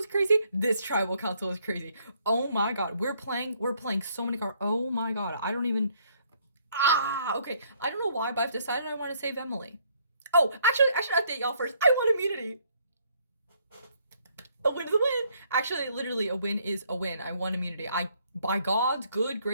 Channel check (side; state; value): both; inverted; correlation -0.67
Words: crazy, this tribal council is crazy. Oh my god, we're playing so many cards. Oh my god, I don't even. Okay. I don't know why, but I've decided I want to save Emily. Oh, actually, I should update y'all first. I want immunity. A win is a win. Actually, literally, a win is a win. I won immunity. By God's good